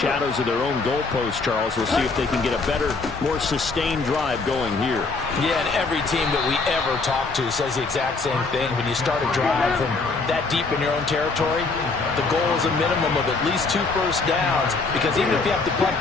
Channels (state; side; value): quieter; right; 4.0 dB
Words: of their own goalpost, Charles. We'll see if they can get a better, more sustained drive going here. Yeah, and every team that we ever talk to says the exact same thing. When you start a drive from that deep in your own territory, the goal is a minimum of at least 2 first downs, because even if you have to punt